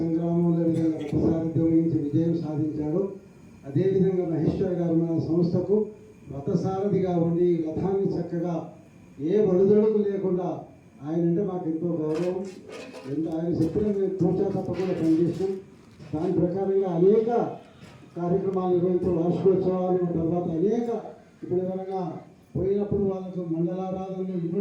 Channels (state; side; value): identical; both; correlation 1.00